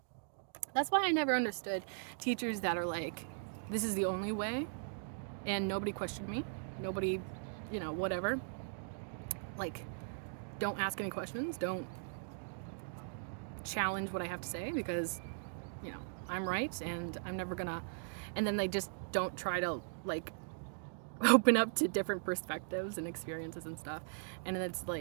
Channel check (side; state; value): left; silent; digital silence